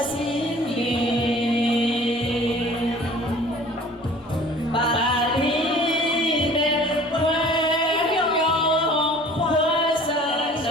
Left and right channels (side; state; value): both; normal; correlation 0.48